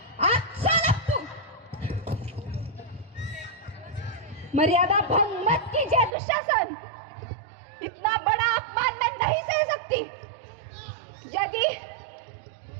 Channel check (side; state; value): left; drops out; at 6.2 s